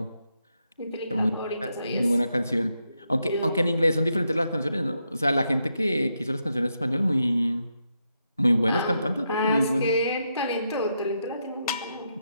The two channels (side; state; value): both; inverted; correlation -0.82